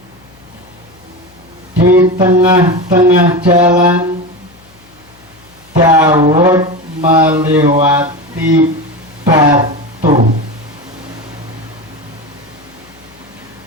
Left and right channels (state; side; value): noise; left; hum, 29 dB below the sound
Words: di tengah-tengah jalan Daud melewati batu.